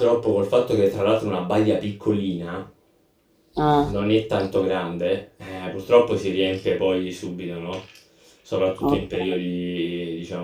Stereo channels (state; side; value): identical; both; correlation 1.00